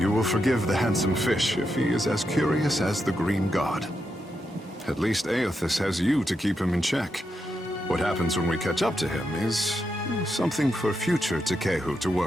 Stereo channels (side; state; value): both; normal; correlation 0.85